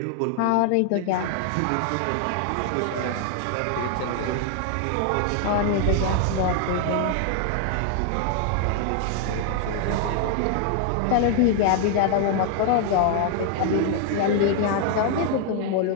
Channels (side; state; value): both; different; correlation 0.00